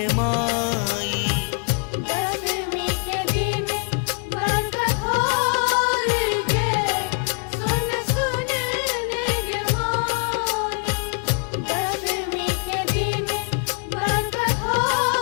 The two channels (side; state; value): right; quieter; 37.5 dB